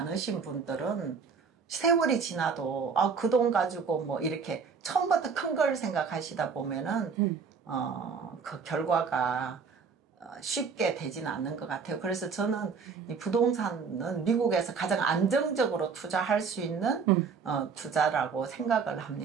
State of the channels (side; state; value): left; quieter; 5.6 dB